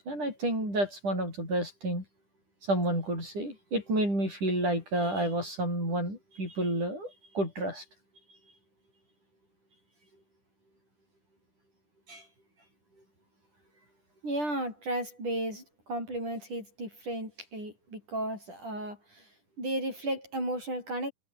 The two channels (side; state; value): left; late; 10 ms